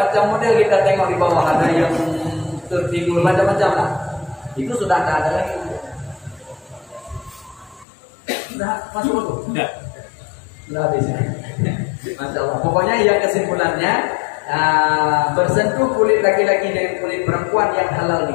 model kita tengok di bawah ada yang tertidur macam-macam lah, itu sudah tak ada lagi. Sudah masuk dulu. Sudah habis. Masya Allah. Pokoknya yang kesimpulannya, bersentuh kulit laki-laki dengan kulit perempuan yang halal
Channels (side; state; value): right; drops out; at 7.9 s